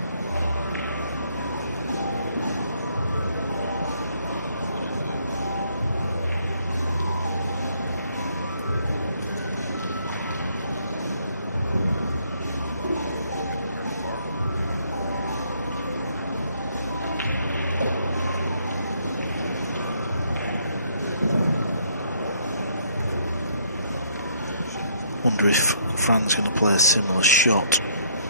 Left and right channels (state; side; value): inverted; both; correlation -0.67